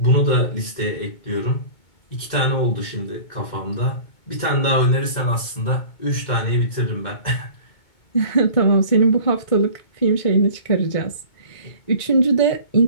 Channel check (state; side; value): late; right; 2.2 ms